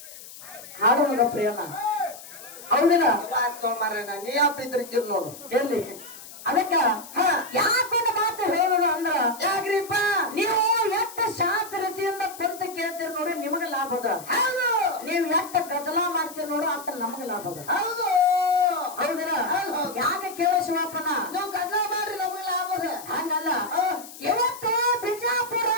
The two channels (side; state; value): left; noise; hiss, 16 dB below the sound